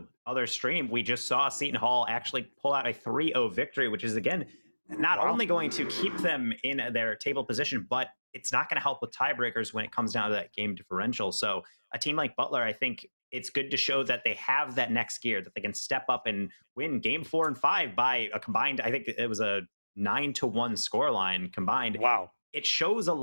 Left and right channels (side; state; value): both; inverted; correlation -1.00